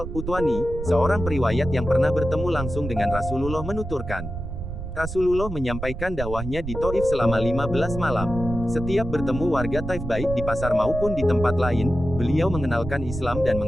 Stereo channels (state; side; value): noise; right; rumble, 7 dB below the sound